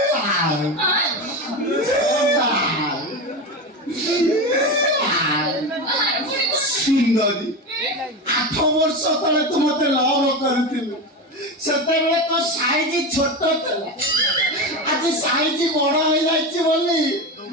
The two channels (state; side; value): normal; both; correlation 0.20